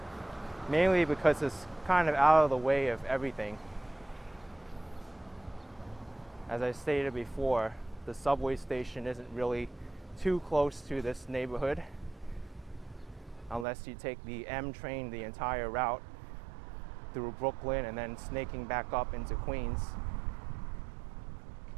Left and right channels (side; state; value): left; drops out; at 13.7 s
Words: mainly because it's kind of out of the way of everything. As I stated before, the subway station isn't really too close to this neighborhood unless you take the M train the entire route through Brooklyn and then snaking back up into Queens.